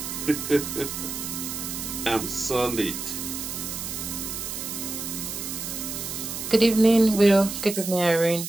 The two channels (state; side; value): noise; right; hiss, 6 dB below the sound